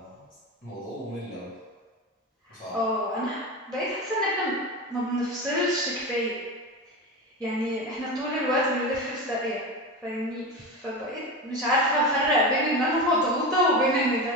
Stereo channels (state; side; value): normal; both; correlation 0.23